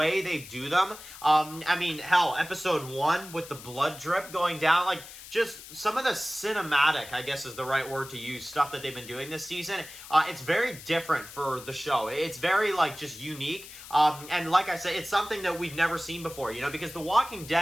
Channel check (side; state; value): left; noise; hiss, 15 dB below the sound